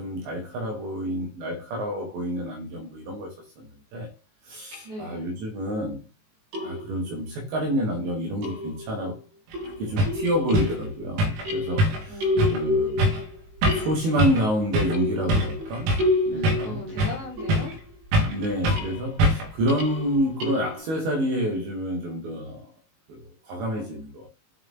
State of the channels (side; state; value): left; late; 19 ms